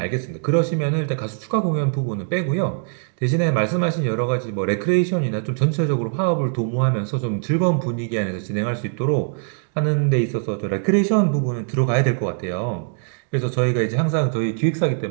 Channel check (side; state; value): left; silent; digital silence